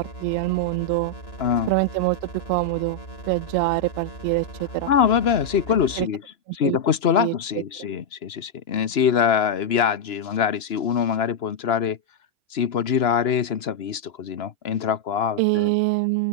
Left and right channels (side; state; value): right; late; 2.9 ms